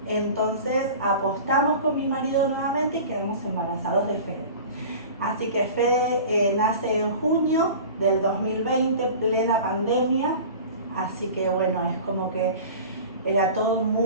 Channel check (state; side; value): inverted; both; correlation -0.38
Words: Entonces, apostamos con mi marido nuevamente y quedamos embarazados de Fede. Así que Fede nace en junio del 2020, plena pandemia. Así que bueno, es como que era todo